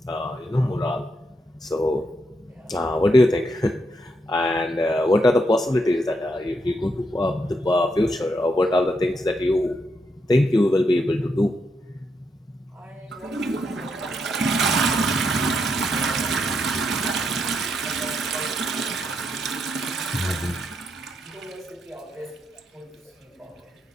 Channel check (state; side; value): normal; both; correlation 0.80